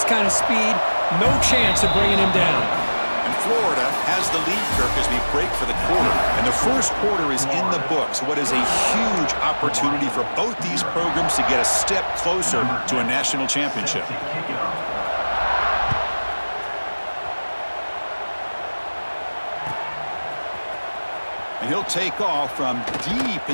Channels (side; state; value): both; inverted; correlation -1.00